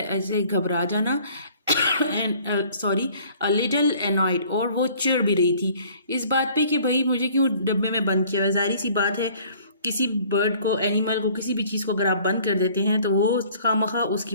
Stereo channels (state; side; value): inverted; both; correlation -0.54